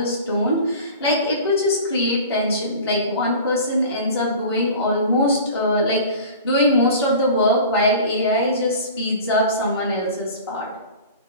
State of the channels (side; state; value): both; inverted; correlation -0.39